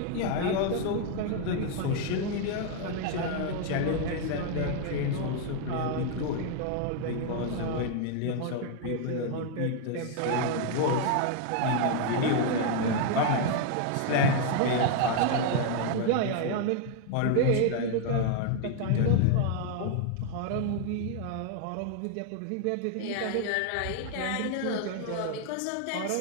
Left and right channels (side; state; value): both; different; correlation 0.00